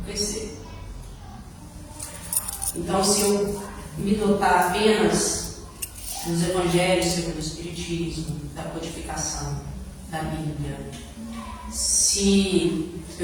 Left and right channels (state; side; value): identical; both; correlation 1.00